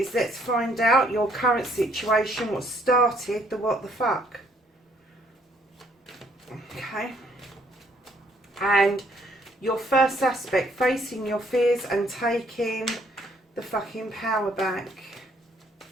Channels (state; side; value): normal; both; correlation 0.66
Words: let's find out your current situation, what started the what the fuck. Okay. And your first aspect, facing your fears and taking the fucking power back.